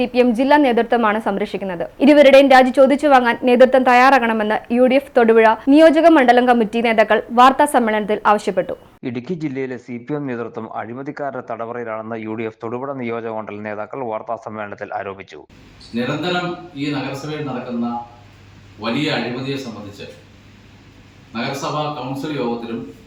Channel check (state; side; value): identical; both; correlation 1.00